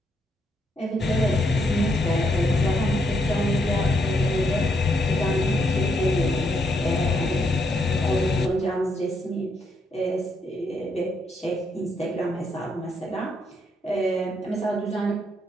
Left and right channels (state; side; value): normal; both; correlation 0.76